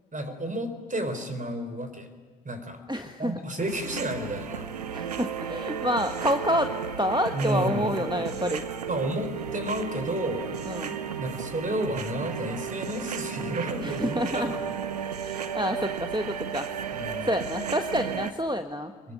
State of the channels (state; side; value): normal; both; correlation 0.45